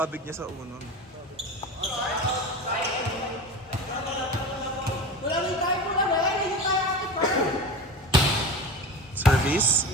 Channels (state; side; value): normal; both; correlation 0.30